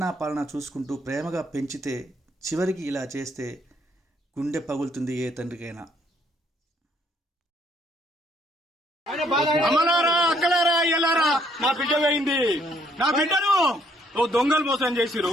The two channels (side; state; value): both; normal; correlation 0.67